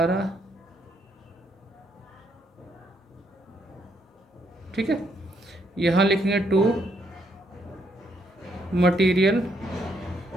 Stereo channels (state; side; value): normal; both; correlation 0.74